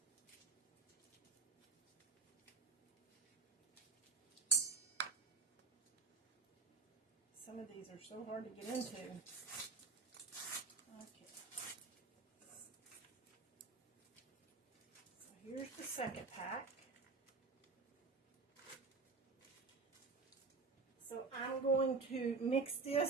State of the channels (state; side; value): quieter; left; 4.4 dB